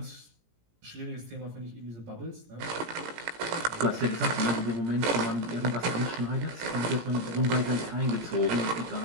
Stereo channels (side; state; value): left; late; 17 ms